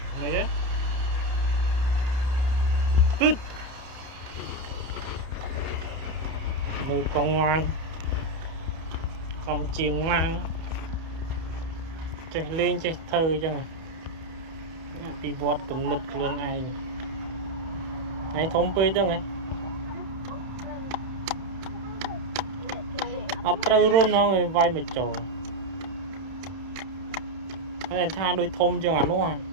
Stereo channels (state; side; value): late; left; 31 ms